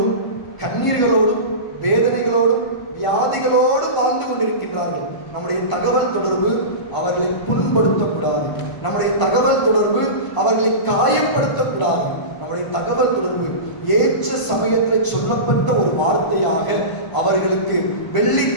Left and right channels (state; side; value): late; right; 1.5 ms